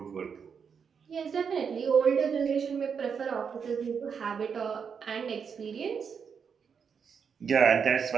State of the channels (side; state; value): left; quieter; 6.5 dB